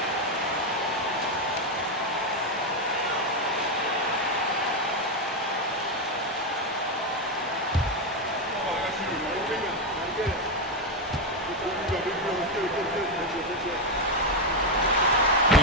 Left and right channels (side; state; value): both; normal; correlation 0.06